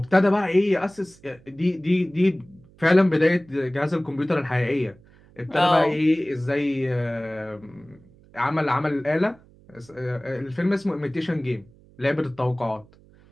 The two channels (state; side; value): noise; right; hum, 27 dB below the sound